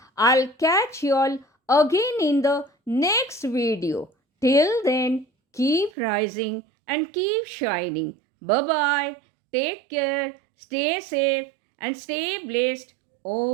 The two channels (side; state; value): left; drops out; at 5.9 s